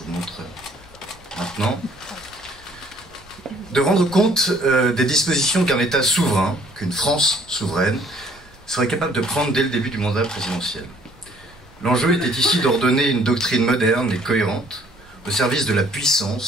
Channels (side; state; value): both; normal; correlation 0.60